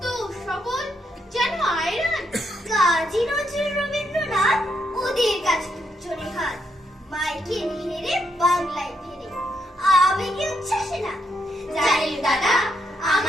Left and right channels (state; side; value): normal; both; correlation 0.78